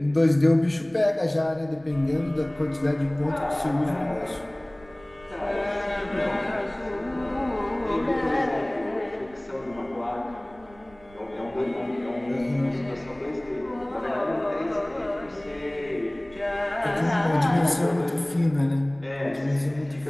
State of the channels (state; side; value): noise; right; rumble, 25 dB below the sound